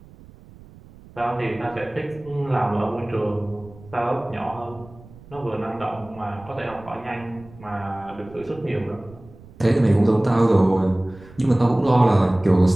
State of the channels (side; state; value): right; noise; rumble, 22 dB below the sound